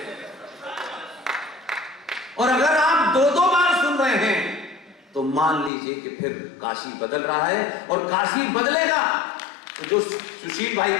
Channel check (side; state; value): right; drops out; at 5.7 s